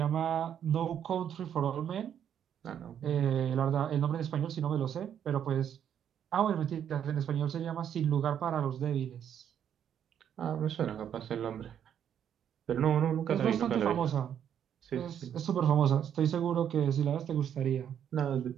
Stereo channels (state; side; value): quieter; left; 9.2 dB